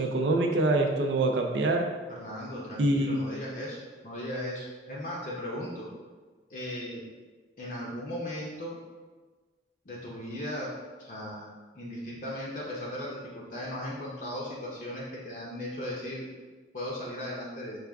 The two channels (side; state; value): both; normal; correlation 0.40